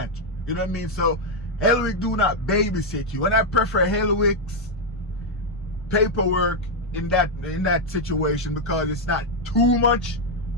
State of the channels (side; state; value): both; normal; correlation 0.00